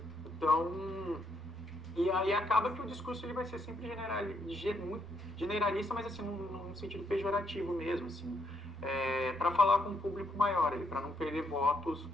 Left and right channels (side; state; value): both; normal; correlation 0.74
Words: Então, e aí acaba que o discurso ele vai ser sempre muito generalista, mas assim, num sentido pejorativo mesmo, assim, para falar com um público maior, para não perder votos